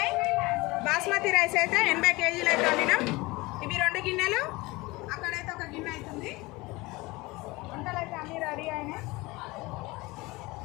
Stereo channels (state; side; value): quieter; right; 22.4 dB